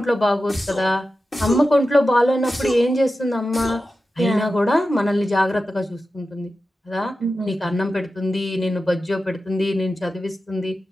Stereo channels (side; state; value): both; normal; correlation 0.92